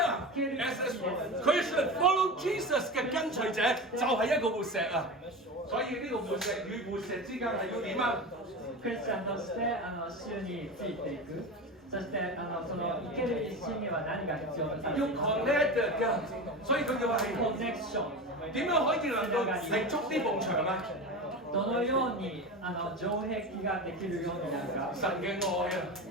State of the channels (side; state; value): both; normal; correlation 0.26